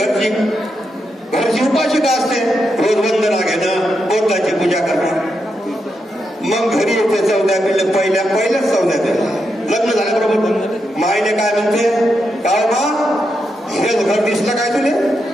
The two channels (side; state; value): both; normal; correlation 0.84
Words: उपाशिका असते, रोज वंदना घेणं, बोधाची पूजा करणं. मग घरी येते 14 पिल्ले, पहिल्याच 14 लग्न झाल्याबरोबर माईने काय म्हणते, काय मा हेच घर दिसलं काय तुले?